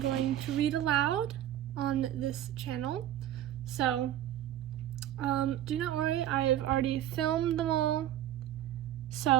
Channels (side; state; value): left; quieter; 12.1 dB